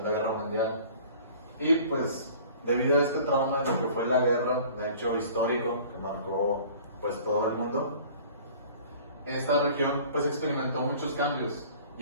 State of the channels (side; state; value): both; inverted; correlation -0.48